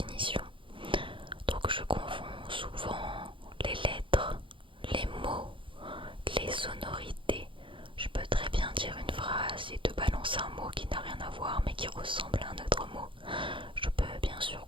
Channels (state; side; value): late; left; 0.25 ms